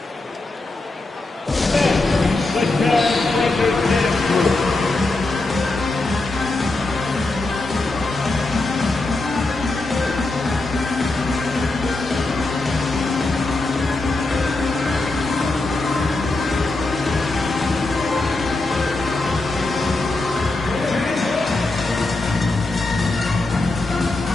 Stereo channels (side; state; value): right; quieter; 3.1 dB